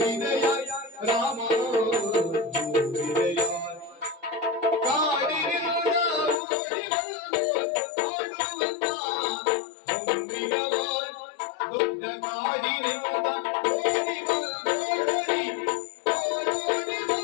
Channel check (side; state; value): right; drops out; at 6.4 s